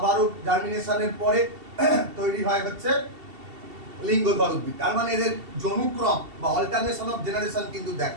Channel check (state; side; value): late; left; 2.7 ms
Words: জার্মিনেশনের পরে তৈরি হয় হচ্ছে লিঙ্গধর উদ্ভিদ। তার মানে এদের জনুক্রম বা অল্টারনেশন অফ জেনারেশন কিন্তু